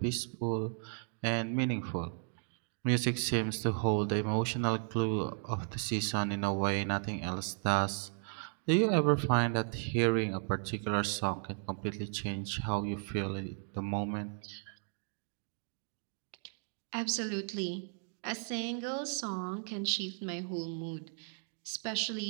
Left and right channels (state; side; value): silent; left; 54 dB below the other